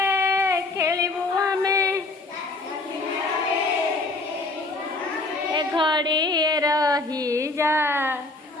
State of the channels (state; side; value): quieter; right; 3.2 dB